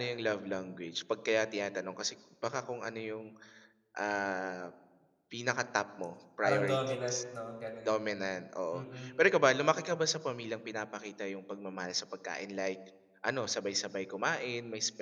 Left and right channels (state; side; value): identical; both; correlation 1.00